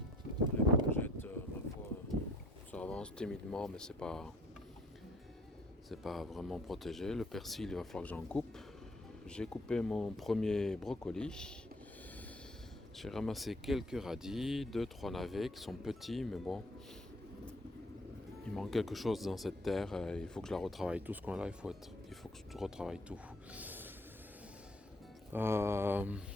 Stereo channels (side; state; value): both; normal; correlation 0.57